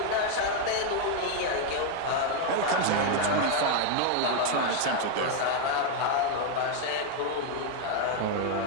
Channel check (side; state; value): both; different; correlation 0.01